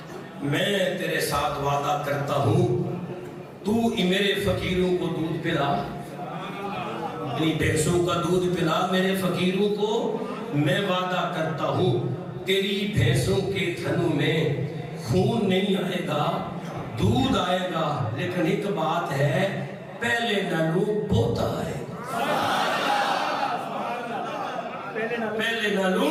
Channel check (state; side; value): identical; both; correlation 1.00